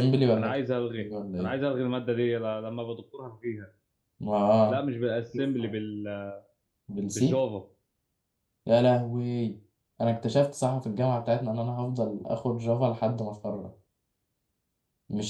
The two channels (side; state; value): both; identical; correlation 1.00